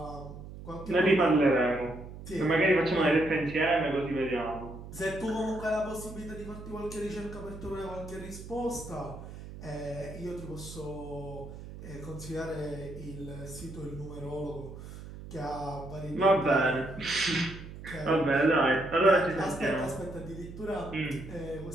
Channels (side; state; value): right; noise; hum, 13 dB below the sound